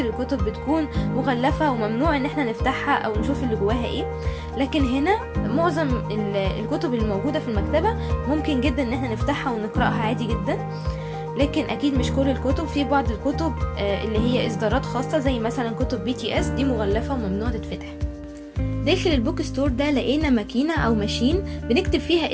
الكتب بتكون مغلفة وممنوع ان احنا نفتحها او نشوف اللي جواها ايه. لكن هنا معظم الكتب اللي موجودة في المكتبة ممكن جدا ان احنا نفتحها ونقرأها عادي جدا. لكن اكيد مش كل الكتب، في بعض الكتب اللي هي اصدارات خاصة زي مثلا كتب BTS دي مغلفة وممنوع تتفتح. داخل البوك ستور ده لقينا ماكينة او ماشين بنكتب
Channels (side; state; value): both; identical; correlation 1.00